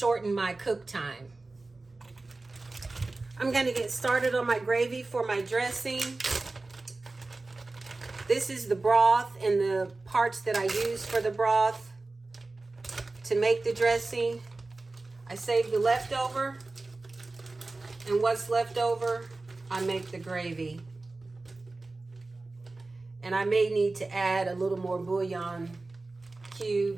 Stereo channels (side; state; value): left; quieter; 3.3 dB